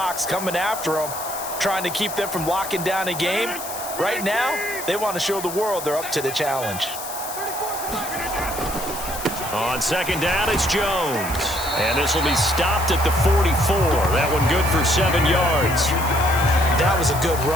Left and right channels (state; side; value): noise; left; hiss, 9 dB below the sound